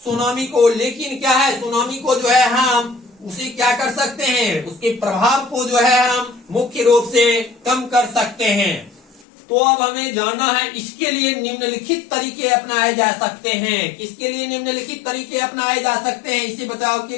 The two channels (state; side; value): drops out; right; at 9.2 s